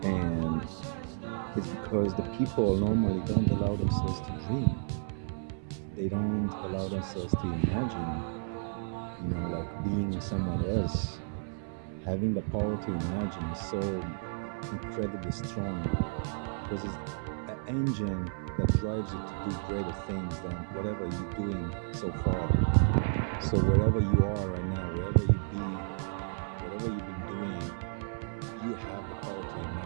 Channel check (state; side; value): silent; left; 56 dB below the other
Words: And it's because the people normally don't allow themselves to dream. They don't allow themselves to imagine, like being someone else. Having the power to imagine is so incredibly strong, because it's an engine that drives you to do greater things than whatever you're doing so far. So wherever you are right now, wherever you be, whatever you've been doing, you have the power to